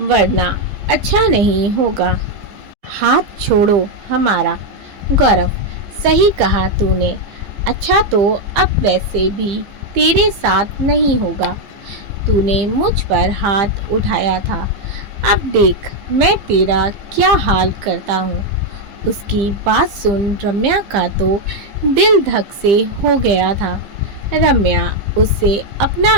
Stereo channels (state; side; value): late; left; 15 ms